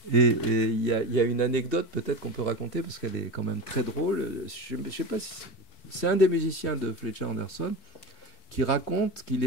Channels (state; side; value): late; right; 4.6 ms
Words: Et il y a une anecdote peut-être qu'on peut raconter parce qu'elle est quand même très drôle. Je ne sais pas si c'est un des musiciens de Fletcher Henderson qui raconte qu'il